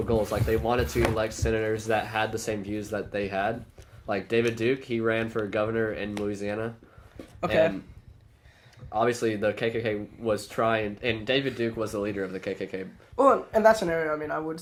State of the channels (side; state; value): both; identical; correlation 1.00